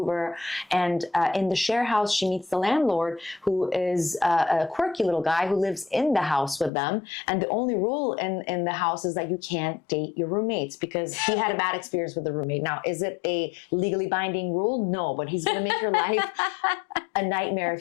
and in the share house, she meets the landlord, who is a quirky little guy who lives in the house with them. And the only rule in the house is that you can't date your roommates because he had a bad experience with the roommate. Now, is it a legally binding rule? No, but he's going to make your life a nightmare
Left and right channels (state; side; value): drops out; right; at 6.7 s